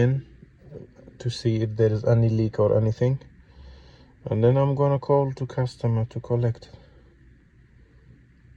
to see if there is any leak or anything, and then I'm gonna call to customer to collect it.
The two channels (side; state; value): both; identical; correlation 1.00